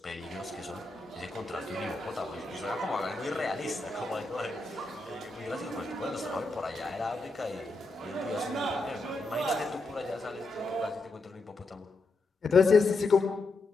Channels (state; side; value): quieter; right; 3.2 dB